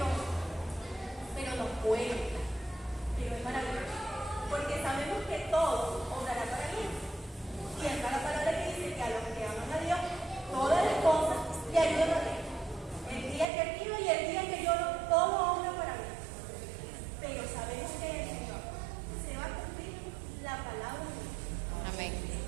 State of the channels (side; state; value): left; drops out; at 13.5 s